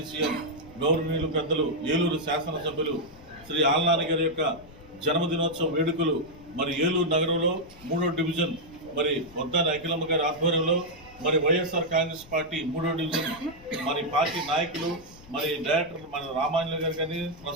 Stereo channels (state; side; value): noise; left; rumble, 22 dB below the sound